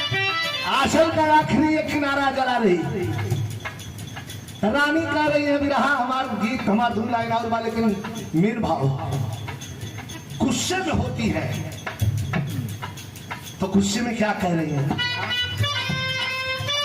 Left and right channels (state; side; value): identical; both; correlation 1.00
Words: आंचल का आखिरी एक किनारा जला रही। रानी कह रही है विरहा हमारा गीत, हमारा धुन लाइन और बा, लेकिन मीन भाव गुस्से में होती है। तो गुस्से में क्या कह रही है?